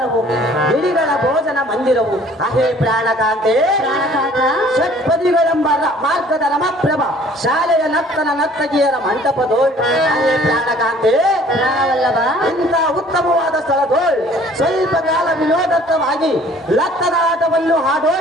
ಗಿಳಿಗಳ ಭೋಜನ ಮಂದಿರವು. ಅಹೇ ಪ್ರಾಣಕಾಂತೆ ಷಟ್ಪದಿಗಳೆಂಬ ಮಾರ್ಗದ ರಮಪ್ರಭ, ಶಾಲೆಯ ನರ್ತಗಿಯರ ಮಂಟಪದೋಳ್. ಅಹೇ ಪ್ರಾಣಕಾಂತೆ ಪ್ರಾಣವಲ್ಲಭ, ಇಂಥ ಉತ್ತಮವಾದ ಸ್ಥಳದೋಳ್ ಸ್ವಲ್ಪ ಕಾಲ ವಿನೋದತ್ವವಾಗಿ ಲತ್ತದ ಆಟವನ್ನು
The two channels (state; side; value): normal; both; correlation 0.54